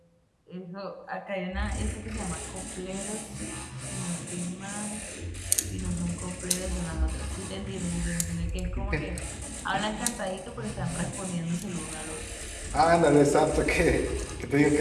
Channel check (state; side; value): identical; both; correlation 1.00